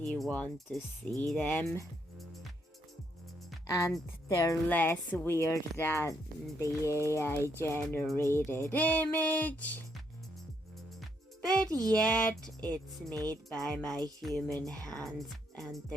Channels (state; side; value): normal; both; correlation 0.75